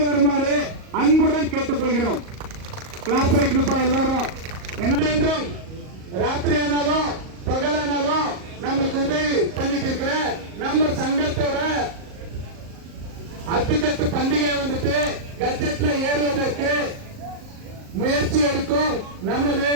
வருமாறு அன்புடன் கேட்டுக்கொள்கிறோம். கிளாஸ் அடிக்கணுப்பா எல்லாரும். என்ன ராத்திரி ஆனாலும் பகலானாலும் நமக்கு உதவி பண்ணிட்டு இருக்கிற நம்ம சங்கத்தோட அத்துக்கட்டு பண்டிகை வந்துட்டு கட்டத்துல ஏறுவதற்கு முயற்சி எடுக்கும் நமது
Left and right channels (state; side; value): late; left; 38 ms